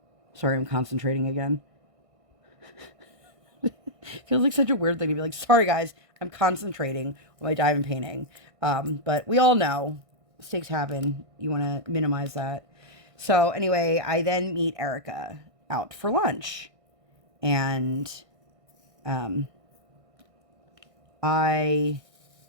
sorry, I'm concentrating again. Feels like such a weird thing to be like, sorry guys, I'm concentrating while I dive in painting. But we all know mistakes happen. You want to minimize that. So anyway, I then meet Erica out for lunch. And I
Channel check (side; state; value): left; late; 1.6 ms